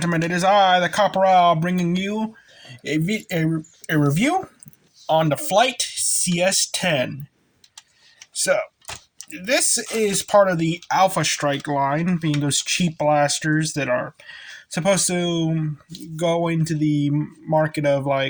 It is I, the Corporal, bringing you a review on the Flyte CS10. So, this is part of the Alphestrike line, being those cheap blasters that are supposed to go into the market of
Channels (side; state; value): both; identical; correlation 1.00